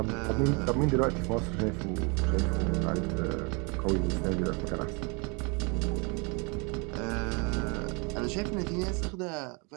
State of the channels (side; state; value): left; quieter; 31.7 dB